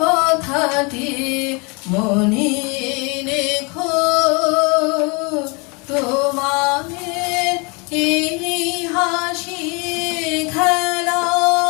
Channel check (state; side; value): quieter; right; 30.2 dB